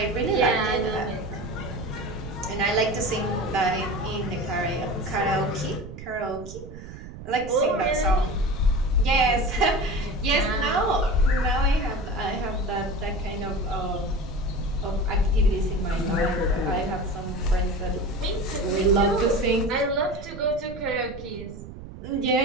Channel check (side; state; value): right; noise; rumble, 13 dB below the sound